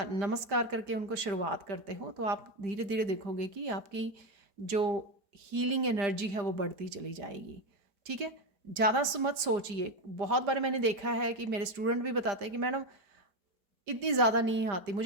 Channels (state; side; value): late; left; 5.0 ms